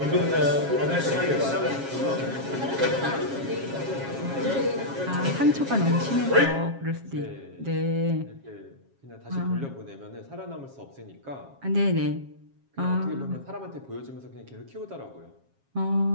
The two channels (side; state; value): left; late; 7.4 ms